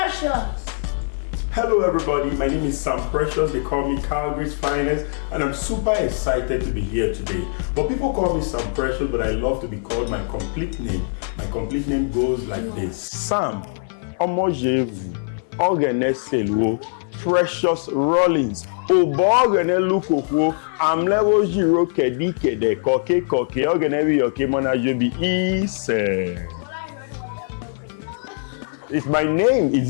Hello everybody, my name is Sam Precious. They call me Calgary's Finest, and I'm super excited to be here today. But people call me Sam Precious, but I love to be called my complete name. My complete name goes like this: Sam Please. Precious Rollins. I'm level 0 kedi kede koke koke ogenevi okemona jobi is. What I heard was It's my name. Is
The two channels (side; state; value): right; silent; 56 dB below the other